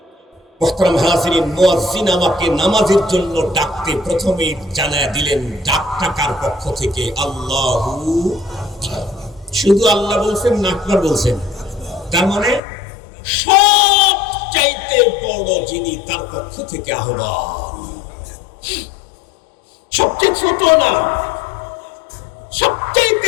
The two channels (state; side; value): drops out; right; at 12.6 s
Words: মুহতারাম হাজিরিন, মুয়াজ্জিন আমাকে নামাজের জন্য ডাকতে প্রথমেই জানায় দিলেন ডাকটা কার পক্ষ থেকে? আল্লাহু। শুধু আল্লাহ বলছেন না, আকবার বলছেন? তার মানে সব চাইতে বড় যিনি, তার পক্ষ থেকে আহ্বান। সবচেয়ে ছোট না, সবচাইতে